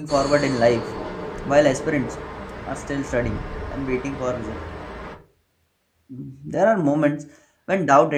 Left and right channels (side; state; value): both; identical; correlation 1.00